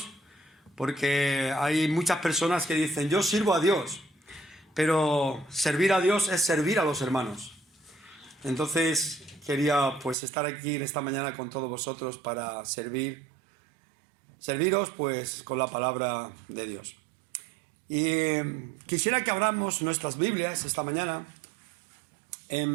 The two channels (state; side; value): drops out; left; at 10.2 s